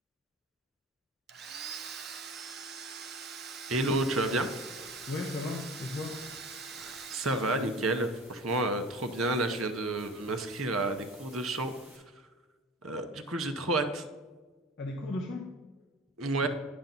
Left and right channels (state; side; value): normal; both; correlation 0.38